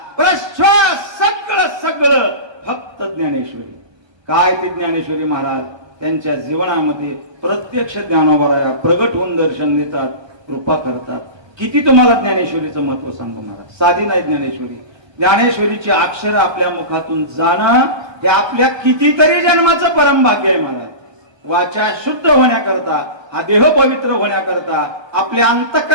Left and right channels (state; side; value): late; left; 1.2 ms